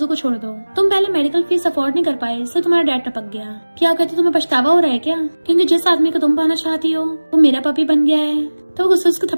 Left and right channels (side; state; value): both; inverted; correlation -1.00